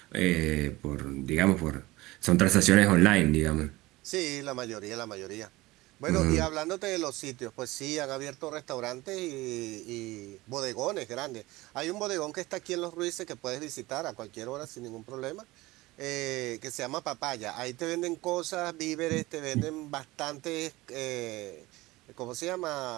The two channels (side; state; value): left; quieter; 19.9 dB